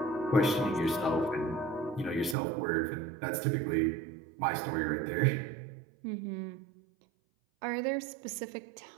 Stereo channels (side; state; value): left; drops out; at 2.4 s